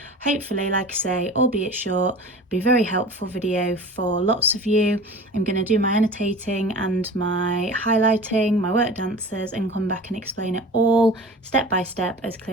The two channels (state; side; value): normal; both; correlation 0.38